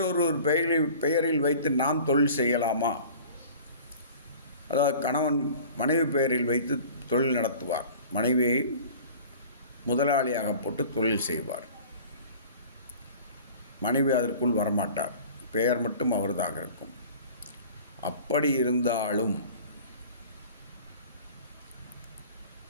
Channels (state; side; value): inverted; both; correlation -0.43